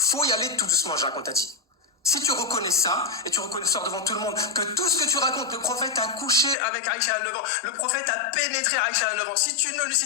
y aller tout doucement, Jacques, on t'a dit. Si tu reconnais ça, et tu reconnais ça devant tout le monde, que tout ce que tu racontes, le prophète a couché avec Aïcha à 9 ans, le prophète a pénétré Aïcha à 9 ans, si tu ne lui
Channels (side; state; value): right; drops out; at 6.6 s